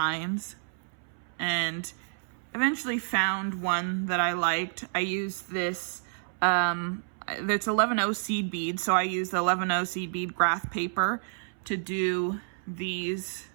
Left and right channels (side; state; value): left; silent; 58 dB below the other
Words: and eventually found one that I liked. I used this, it's 11-0 seed bead, so I used the 11-0 seed bead graph paper to do these